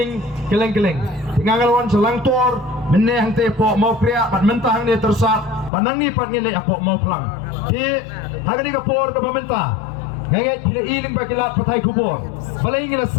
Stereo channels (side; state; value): right; drops out; at 5.7 s